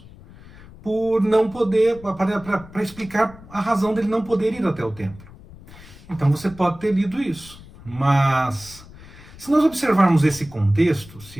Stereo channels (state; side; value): noise; left; rumble, 20 dB below the sound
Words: por não poder, para explicar a razão dele não poder ir até o templo. Então você pode ter lido isso, mas se nós observarmos esse contexto,